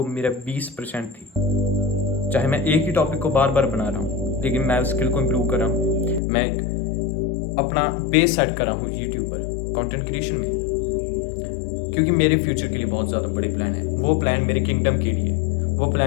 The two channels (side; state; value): right; drops out; at 6.2 s